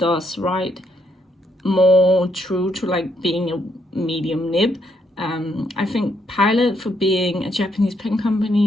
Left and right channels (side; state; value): both; normal; correlation 0.75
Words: write more true to like being a medium nib. I think Pilot, for being a Japanese pen